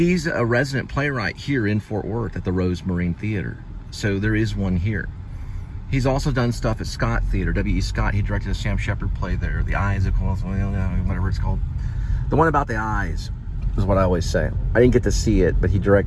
a resident playwright here in Fort Worth at the Rose Marine Theater. So there is one here. He's also done stuff at Scott Theater, W.E. Scott. He directed a Sam Shepard play there, The Eyes of Cole, whatever it's called. The one about the eyes is what I always say. I didn't get to see it, but he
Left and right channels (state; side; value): identical; both; correlation 1.00